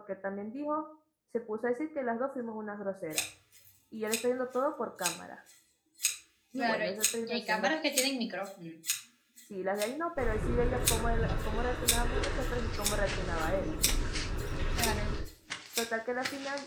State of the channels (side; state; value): both; identical; correlation 1.00